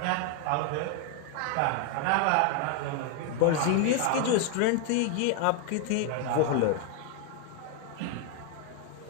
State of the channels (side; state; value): both; different; correlation 0.01